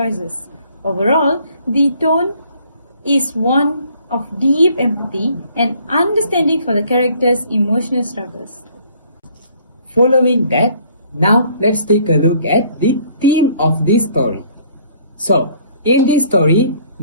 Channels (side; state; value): both; inverted; correlation -0.60